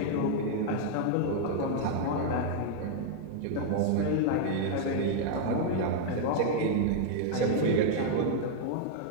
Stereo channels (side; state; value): both; different; correlation -0.01